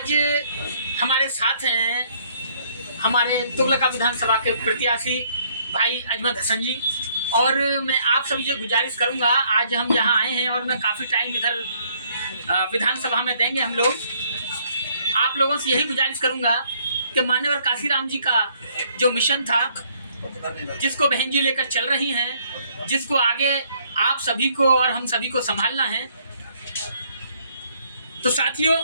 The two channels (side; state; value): both; inverted; correlation -0.65